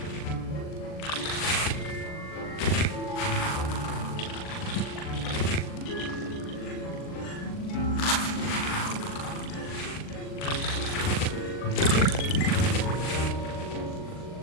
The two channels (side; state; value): right; late; 39 ms